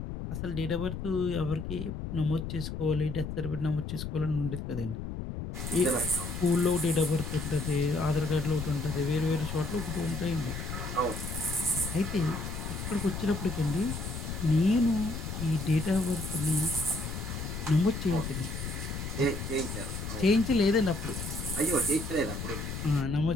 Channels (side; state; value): left; noise; rumble, 6 dB below the sound